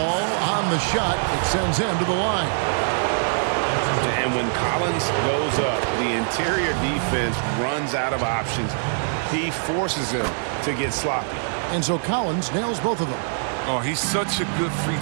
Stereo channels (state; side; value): silent; left; digital silence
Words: on the shot. It sends him to the line. And when Collins goes up, the interior defense runs out of options. He forces him to get sloppy. And so Collins nails both of them. Oh, he's such a good free